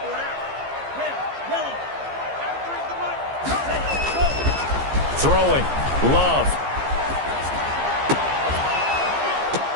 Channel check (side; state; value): left; late; 15 ms